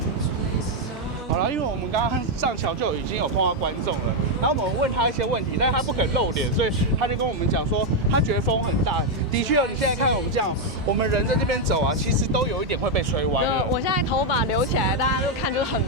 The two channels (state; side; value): normal; both; correlation 0.02